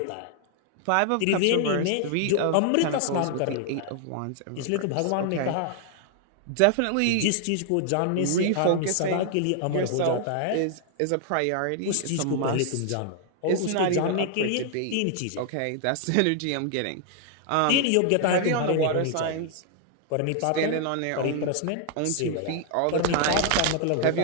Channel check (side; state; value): both; different; correlation 0.00